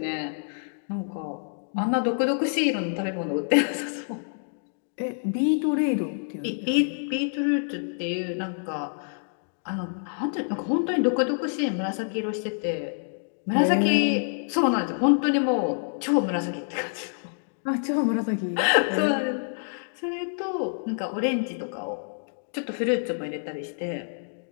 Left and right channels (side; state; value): right; silent; digital silence